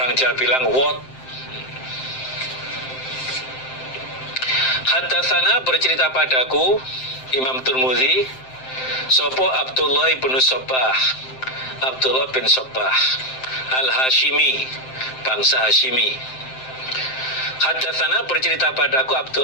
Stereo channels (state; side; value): late; right; 7.7 ms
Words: Jawa bilang wot. Haddatsana, bercerita padaku Imam Tirmidzi, sopo Abdullah bin Sabbah, Abdullah bin Sabbah Al-Hashimi, bangsa Hashimi. Hadatsana bercerita padaku